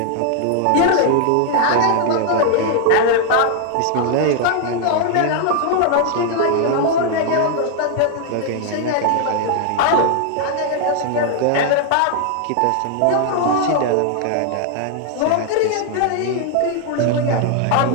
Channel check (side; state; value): both; different; correlation 0.00